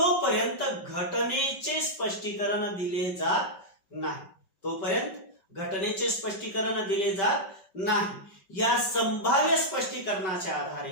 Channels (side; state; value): right; late; 5.2 ms